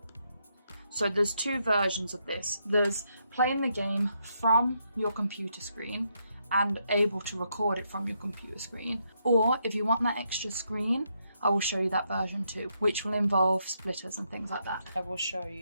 So there's two versions of this. There's playing the game from your computer screen and able to record it from your computer screen. Or if you want that extra screen, I will show you that version too, which will involve splitters and things like that. I will show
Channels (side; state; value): both; inverted; correlation -0.78